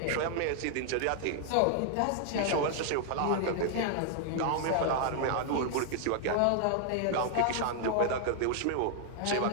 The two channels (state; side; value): different; both; correlation 0.00